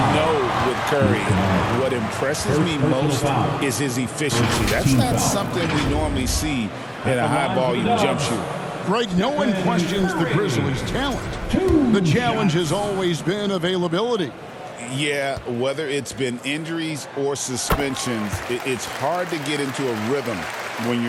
know with Curry, what impresses me most is his efficiency. That's not something we normally see in a high-volume jump shooter. Right, no one questions the Grizzlies' talent. The challenge has always been availability. Yeah, whether it's been injuries or suspensions, it's hard to get into a rhythm when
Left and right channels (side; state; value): both; identical; correlation 1.00